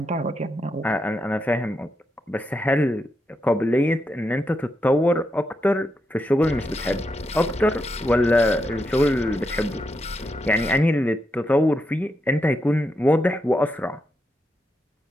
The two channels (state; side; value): normal; both; correlation 0.84